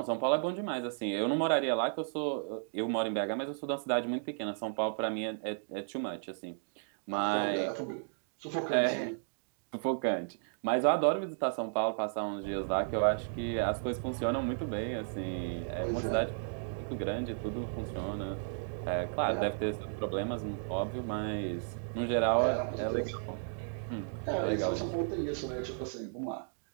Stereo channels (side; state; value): left; silent; digital silence